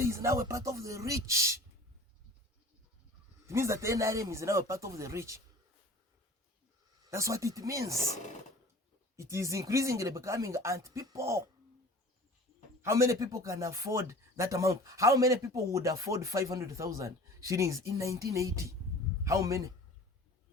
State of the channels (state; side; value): normal; both; correlation 0.43